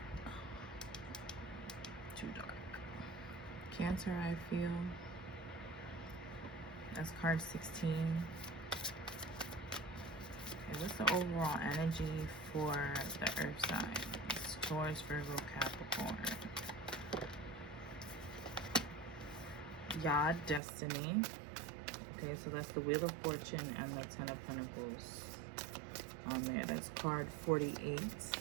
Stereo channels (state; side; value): drops out; left; at 20.6 s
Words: Too dark. Cancer, I feel. That's card 16. Okay, what's the overall energy for the earth signs? Taurus, Virgo, Capricorn. Yod, Destiny. Okay, so that's the Wheel of Fortune and the Ten of Pentacles on there. That's card 48.